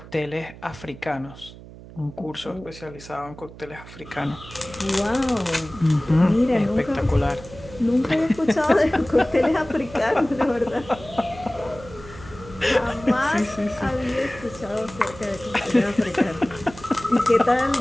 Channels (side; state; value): right; noise; hum, 17 dB below the sound